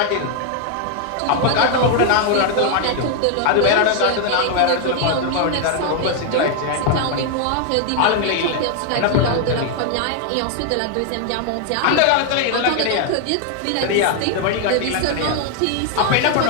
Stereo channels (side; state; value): both; different; correlation 0.00